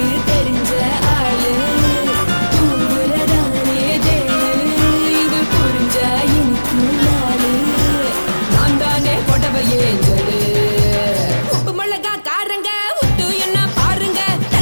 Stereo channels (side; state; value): both; inverted; correlation -1.00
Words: தெரிஞ்ச ஆளு தூங்குறதானே தேனு இது புரிஞ்ச எனக்கு நாளு நான் தானே கொடவையே ஏஞ்சலு உப்பு மிளகா காரங்க உத்து என்ன பாருங்க